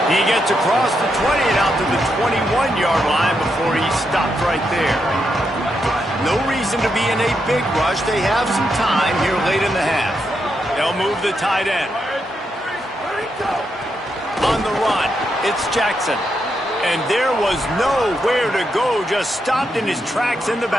He gets across the 20 and out to the 21-yard line before he stopped right there. No reason to be in a big rush. They have some time here late in the half. They'll move the tight end. On the run, it's Jackson. And there was nowhere to go, just stopped in his tracks in the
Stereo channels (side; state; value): both; normal; correlation 0.82